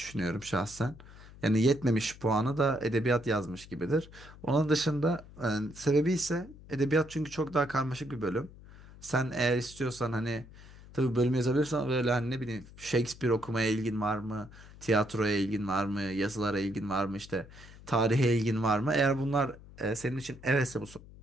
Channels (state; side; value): noise; left; hum, 19 dB below the sound